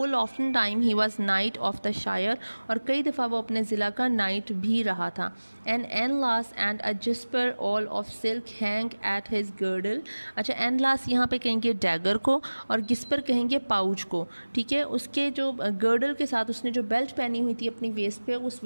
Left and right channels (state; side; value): inverted; both; correlation -1.00